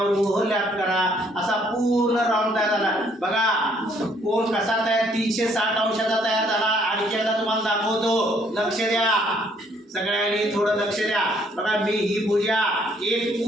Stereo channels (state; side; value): normal; both; correlation 0.66